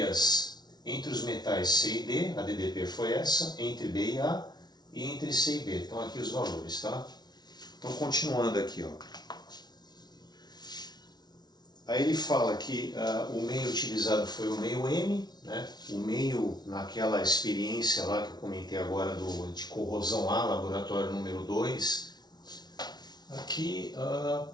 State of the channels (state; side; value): late; right; 0.19 ms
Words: entre os metais C e D, a DDP foi essa, entre B e A, e entre C e B. Então aqui os valores, tá? Então continuando aqui, ó. Aí ele fala que o meio utilizado foi o meio M, né? O meio naquela experiência lá que eu comentei agora de corrosão A, laboratório número 2. Aqui